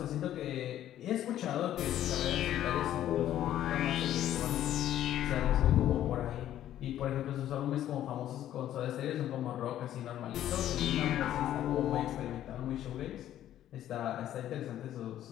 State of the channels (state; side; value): quieter; right; 12.1 dB